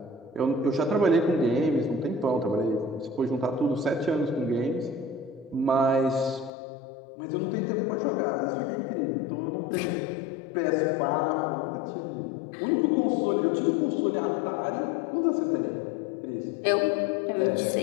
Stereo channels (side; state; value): right; drops out; at 6.5 s